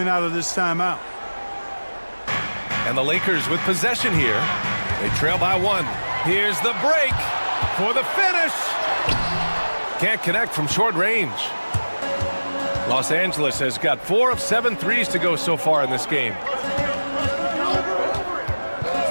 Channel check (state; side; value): inverted; both; correlation -1.00